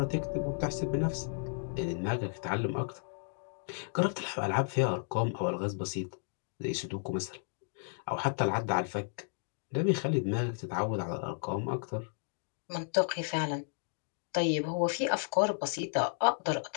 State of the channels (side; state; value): right; silent; digital silence